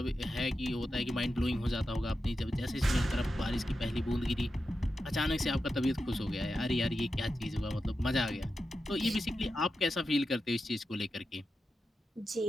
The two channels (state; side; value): normal; both; correlation 0.90